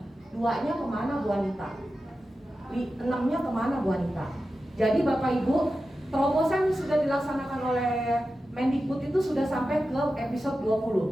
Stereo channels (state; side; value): normal; both; correlation 0.92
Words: 2-nya kemana Bu Anita? 6-nya kemana Bu Anita? Jadi Bapak Ibu, terobosan sudah dilaksanakan oleh Mendikbud itu sudah sampai ke episode